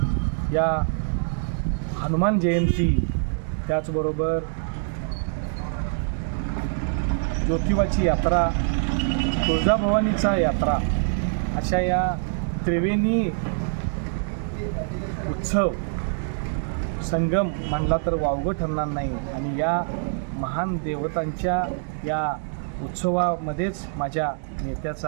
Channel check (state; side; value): silent; left; digital silence